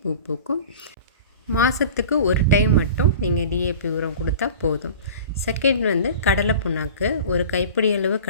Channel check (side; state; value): both; inverted; correlation -0.39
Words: பூ பூக்கும். மாதத்துக்கு ஒரு டைம் மட்டும் நீங்கள் டிஏபி உரம் கொடுத்தா போதும். செகண்ட் கடலை புண்ணாக்கு. ஒரு கைப்பிடி அளவு